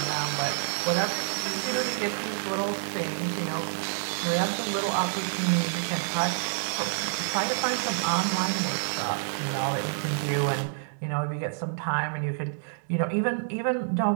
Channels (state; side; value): silent; left; digital silence